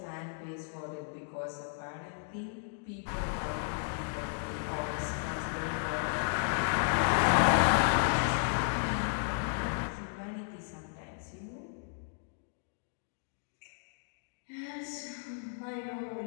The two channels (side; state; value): right; silent; digital silence